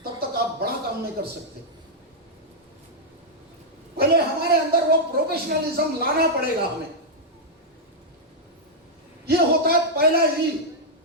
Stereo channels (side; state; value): both; normal; correlation -0.05